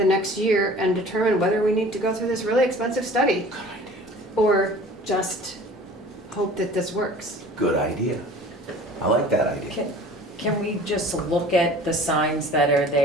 next year and determine whether we need to go through this really expensive study or just hope that this works. Good idea. I like that idea. Can we just look at the signs that are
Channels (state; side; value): normal; both; correlation 0.45